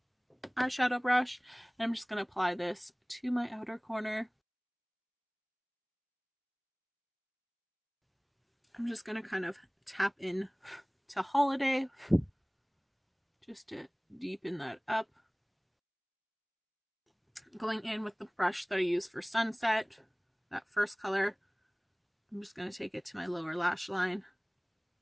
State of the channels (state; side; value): identical; both; correlation 1.00